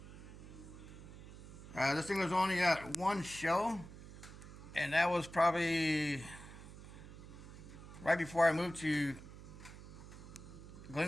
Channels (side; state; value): right; noise; hum, 14 dB below the sound